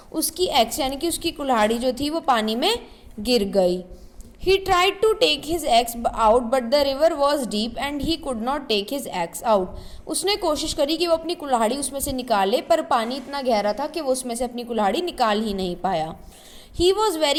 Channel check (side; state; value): both; identical; correlation 1.00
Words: उसकी एक्स यानी कि उसकी कुल्हाड़ी जो थी वो पानी में गिर गई। He tried to take his axe out but the river was deep and he could not take his axe out. उसने कोशिश करी कि वो अपनी कुल्हाड़ी उसमें से निकाले, पर पानी इतना गहरा था कि वो उसमें से अपनी कुल्हाड़ी निकाल ही नहीं पाया। He was